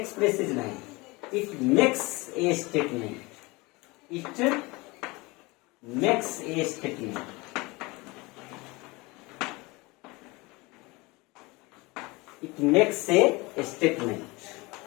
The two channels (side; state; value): right; quieter; 24.1 dB